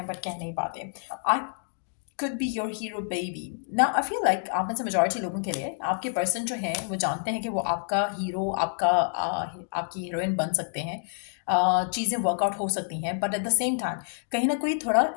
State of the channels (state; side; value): silent; right; digital silence